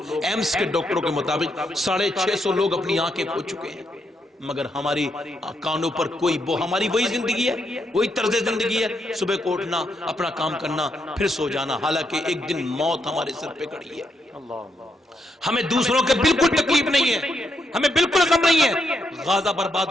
ایمس کے ڈاکٹروں کے مطابق 650 لوگ اپنی آنکھیں کھو چکے ہیں. مگر ہماری کانوں پر کوئی ہماری وہی زندگی ہے, وہی طرز زندگی ہے, صبح کو اٹھنا, اپنا کام کرنا, پھر سو جانا. حالانکہ ایک دن موت ہمارے سر پہ کھڑی ہے. ہمیں دوسروں کے بالکل تکلیف نہیں ہے, ہمیں بالکل غم نہیں ہے. غزہ برباد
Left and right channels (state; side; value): normal; both; correlation 0.79